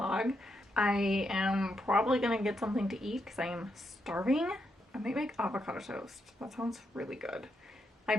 I am probably gonna get something to eat because I am starving. I might make avocado toast. That sounds really good. I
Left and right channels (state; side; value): normal; both; correlation 0.81